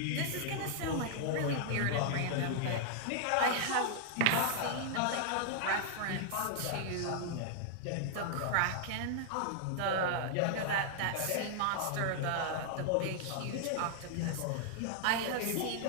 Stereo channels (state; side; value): different; both; correlation -0.01